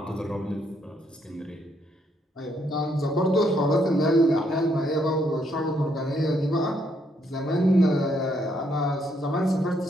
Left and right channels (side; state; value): both; normal; correlation 0.73